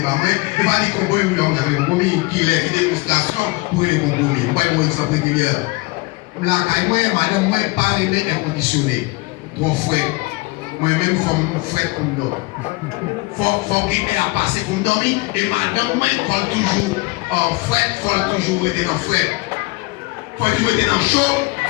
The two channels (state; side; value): quieter; right; 23.9 dB